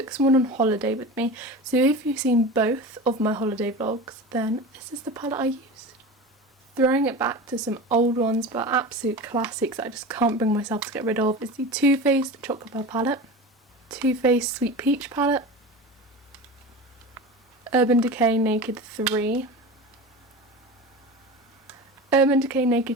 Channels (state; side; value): normal; both; correlation 0.30